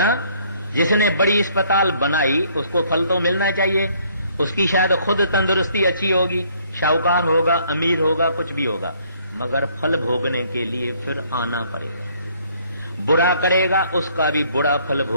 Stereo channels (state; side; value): inverted; both; correlation -0.63